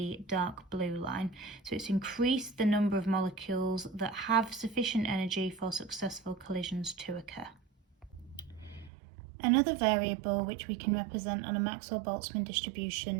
dark blue line. So it's increased the number of molecules that have sufficient energy for successful collisions to occur. Another variable which we can represent on a Maxwell-Boltzmann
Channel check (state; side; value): drops out; left; at 8.9 s